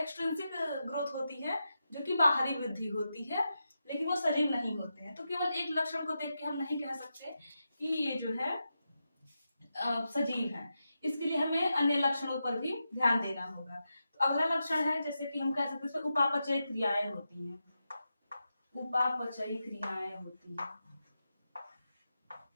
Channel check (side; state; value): both; inverted; correlation -0.88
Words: ग्रोथ होती है, जो कि बाहरी वृद्धि होती है, लेकिन वो सजीव नहीं होते हैं। तो केवल एक लक्षण को देख के हम नहीं कह सकते कि ये जो है सजीव है। इसके लिए हमें अन्य लक्षणों पर भी ध्यान देना होगा। तो अगला लक्षण है, जैसे कि हम कह सकते हैं उपापचयी क्रियाएं होती हैं। उपापचयी क्रियाएं होती हैं।